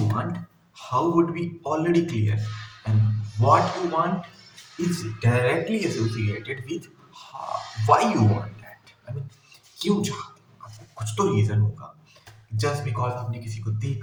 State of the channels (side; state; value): both; identical; correlation 1.00